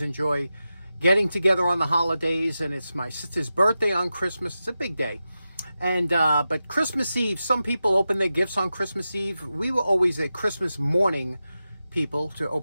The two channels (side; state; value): both; inverted; correlation -0.92